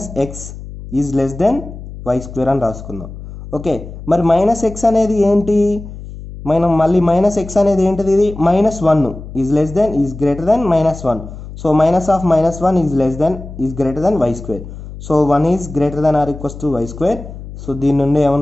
is less then y square అని రాసుకుందాం. ఓకే, మరి -x అనేది ఏంటి, మనం మళ్ళీ -x అనేది ఏంటిది, ఇది -1 is less than is greater than -1. So -1 is greater than y square. So 1 is greater than or equals to y square. So దీని నుండి ఏమని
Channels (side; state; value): left; noise; hum, 13 dB below the sound